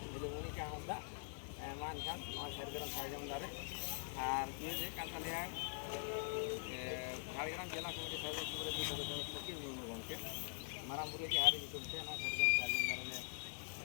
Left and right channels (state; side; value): silent; right; digital silence